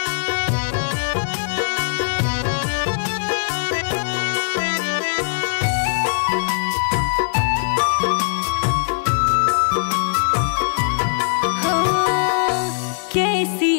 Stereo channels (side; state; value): right; silent; digital silence